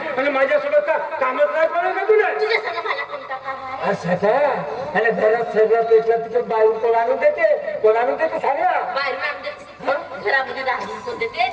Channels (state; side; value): identical; both; correlation 1.00